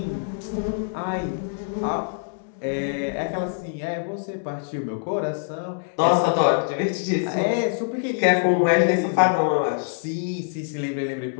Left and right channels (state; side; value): silent; right; digital silence